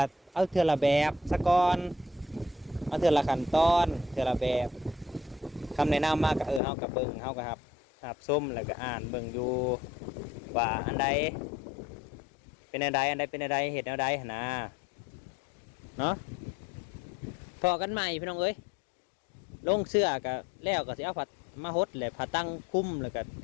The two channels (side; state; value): right; drops out; at 6.6 s